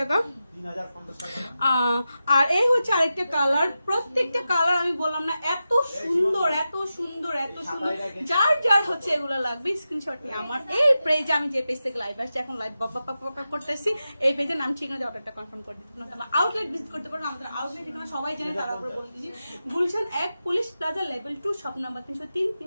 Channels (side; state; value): both; inverted; correlation -0.91